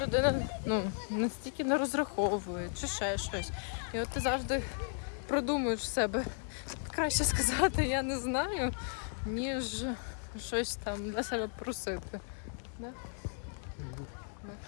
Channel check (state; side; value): silent; right; 54 dB below the other